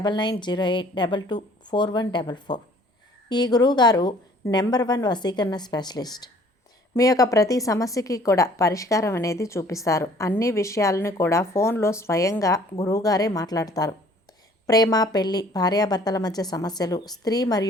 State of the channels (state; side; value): normal; both; correlation 0.55